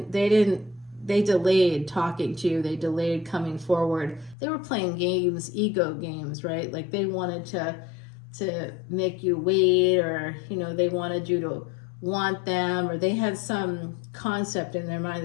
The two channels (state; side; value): drops out; right; at 4.4 s